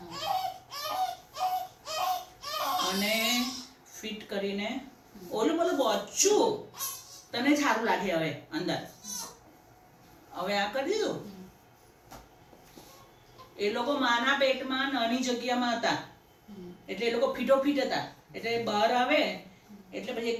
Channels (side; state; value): both; identical; correlation 1.00